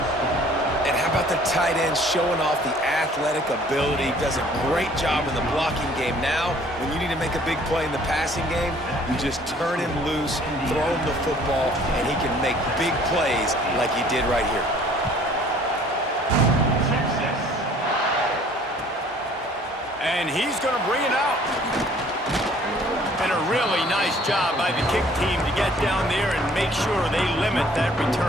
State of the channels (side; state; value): both; normal; correlation 0.55